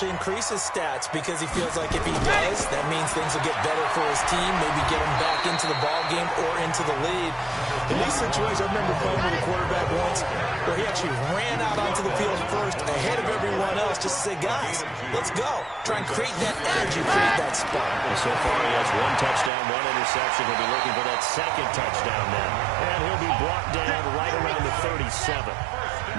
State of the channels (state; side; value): drops out; left; at 19.5 s